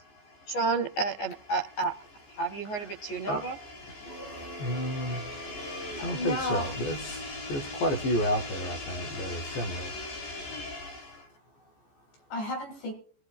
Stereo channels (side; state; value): right; late; 14 ms